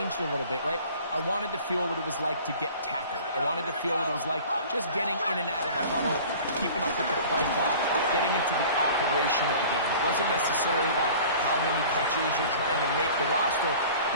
a little bit, right? I wanted to feel what it was like to get tackled. I wanted to feel what it was like just getting in and out of the huddle, keeping up with the play clock, getting into the operation of the game. It wasn't necessarily about how many catches or trying to make the roster,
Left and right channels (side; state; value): both; inverted; correlation -0.44